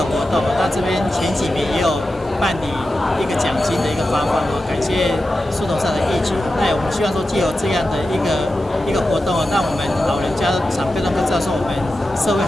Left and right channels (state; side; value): normal; both; correlation 0.92